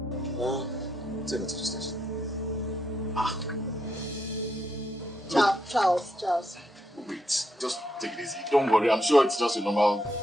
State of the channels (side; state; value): both; normal; correlation 0.79